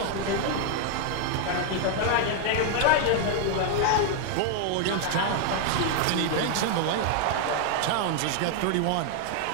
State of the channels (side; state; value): both; different; correlation 0.00